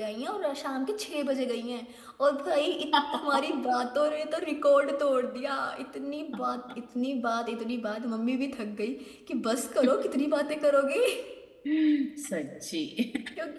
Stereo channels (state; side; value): identical; both; correlation 1.00